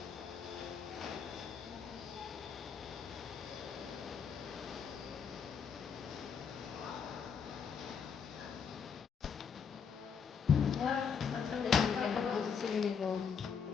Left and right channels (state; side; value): quieter; right; 6.6 dB